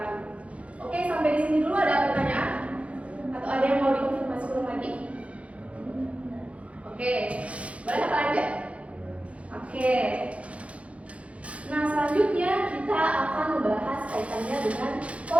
Oke, sampai di sini dulu ada pertanyaan? Atau ada yang mau dikonfirmasi ulang lagi? Oke, boleh kita lanjut? Oke. Nah, selanjutnya kita akan membahas kaitannya dengan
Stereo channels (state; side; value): late; left; 0.063 ms